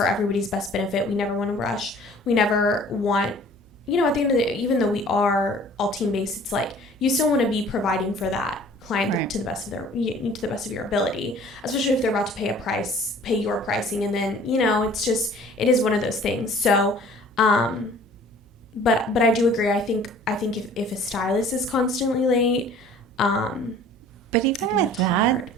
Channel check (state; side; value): noise; right; hum, 28 dB below the sound